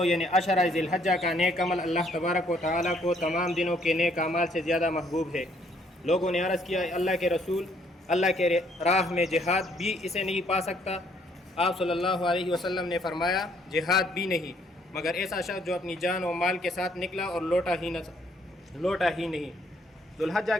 یعنی عشرہ ذی الحجہ کا نیک عمل اللہ تبارک و تعالیٰ کو تمام دنوں کے نیک اعمال سے زیادہ محبوب ہے۔ لوگوں نے عرض کیا، اللہ کے رسول، اللہ کے راہ میں جہاد بھی اسے نہیں پا سکتا؟ آپ صلی اللہ علیہ وسلم نے فرمایا، جہاد بھی نہیں، مگر ایسا شخص جو اپنی جان و مال کے ساتھ نکلا اور لوٹا ہی نہیں۔ ذو الحجہ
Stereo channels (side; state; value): both; normal; correlation 0.66